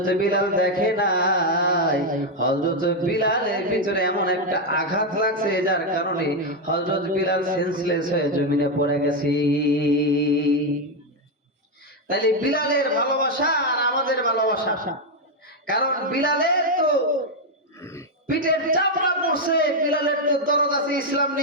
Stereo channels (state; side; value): normal; both; correlation 0.04